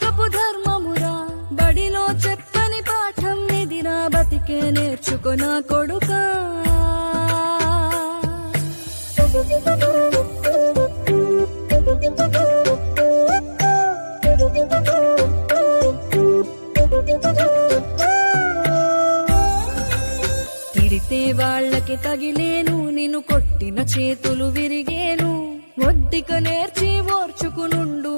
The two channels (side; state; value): both; inverted; correlation -1.00